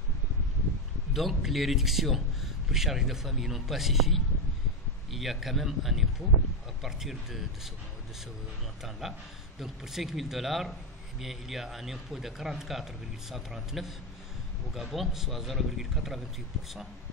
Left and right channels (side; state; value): both; normal; correlation 0.07